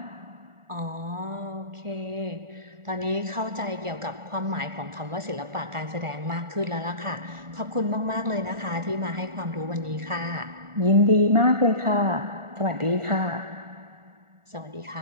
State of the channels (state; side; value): late; left; 1.4 ms